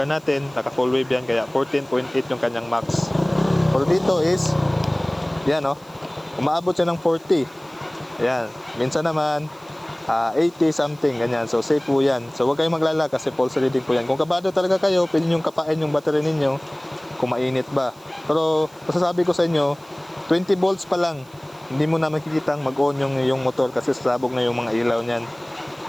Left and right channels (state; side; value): noise; right; hiss, 28 dB below the sound